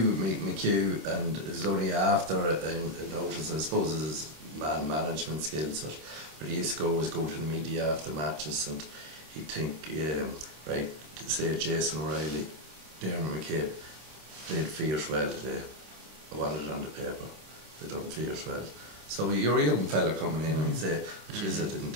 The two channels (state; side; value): late; left; 26 ms